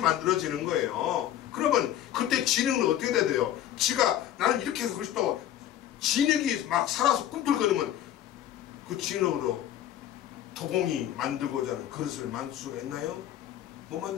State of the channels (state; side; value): quieter; right; 11.8 dB